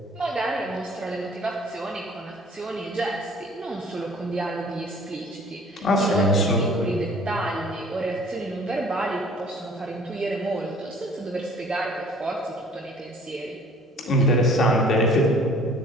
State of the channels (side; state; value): both; normal; correlation 0.52